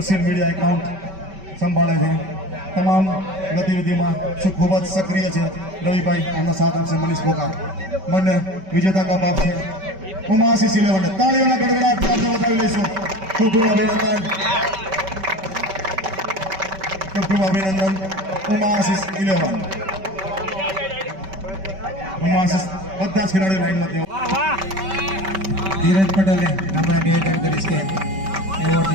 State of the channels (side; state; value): left; late; 5.2 ms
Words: મીડિયા એકાઉન્ટ સંભાળે છે, તમામ ગતિવિધિમાં ખૂબ જ સક્રિય છે. રવિભાઈ એમનો સાથ આપશે. મનીષ પોકા બંને વિજેતા કપ આપશે. ઉમાશીષ 11 તાળીઓના ગડગડાટ આપણે વધાવી લઈશું. ખૂબ ખૂબ અભિનંદન, ખૂબ ખૂબ અભિનંદન. ઉમાશીષ 11 ઉમાશીષ બધા જ ખેલાડીઓ લાઈનમાં તેઓ ધીરજ પટેલને આપણે નિવેદન કરીશ કે